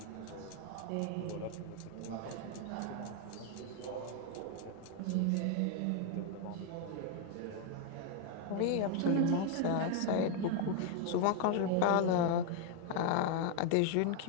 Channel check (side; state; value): both; different; correlation 0.00